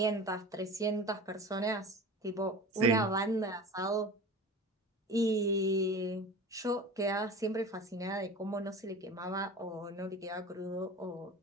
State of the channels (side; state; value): both; normal; correlation 0.35